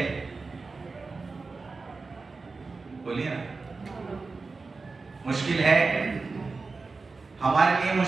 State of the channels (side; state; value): left; quieter; 4.1 dB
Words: बोलिए ना, मुश्किल है। हमारे लिए